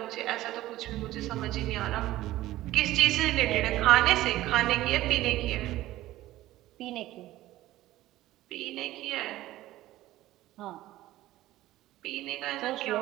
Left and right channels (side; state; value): left; quieter; 15.7 dB